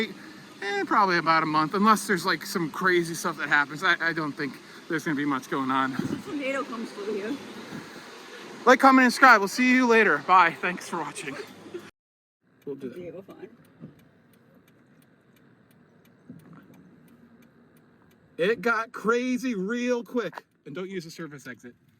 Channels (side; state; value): both; identical; correlation 1.00